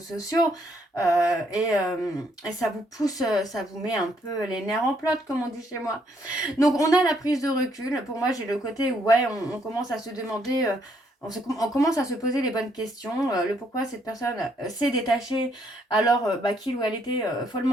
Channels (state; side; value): normal; both; correlation 0.71